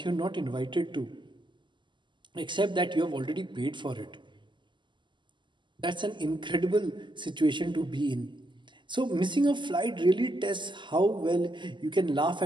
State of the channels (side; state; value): left; late; 0.23 ms